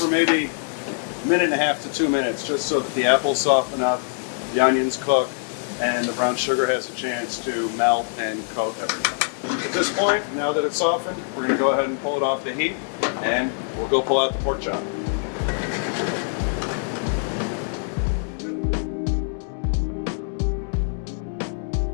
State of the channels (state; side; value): silent; right; 63 dB below the other